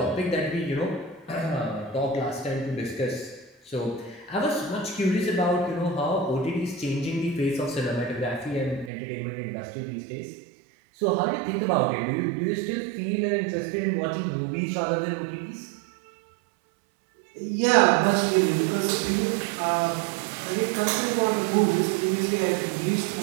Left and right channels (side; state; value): left; drops out; at 8.9 s